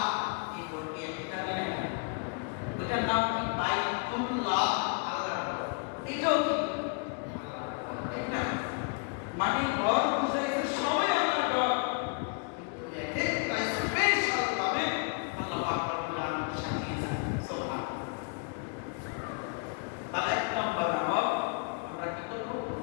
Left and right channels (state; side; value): quieter; right; 36.8 dB